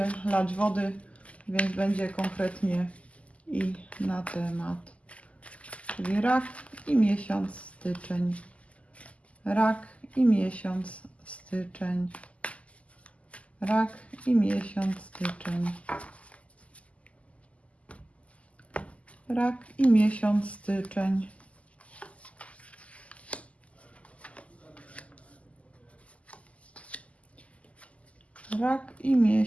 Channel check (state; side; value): late; right; 0.065 ms